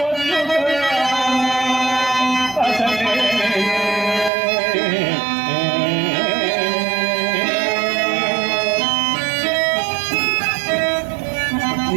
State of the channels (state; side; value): drops out; left; at 4.3 s